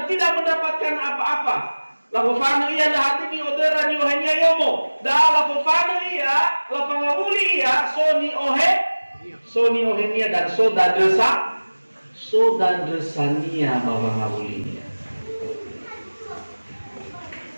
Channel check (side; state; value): both; inverted; correlation -1.00